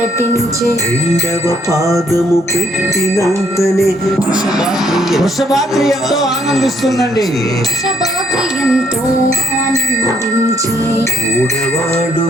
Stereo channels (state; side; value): normal; both; correlation 0.68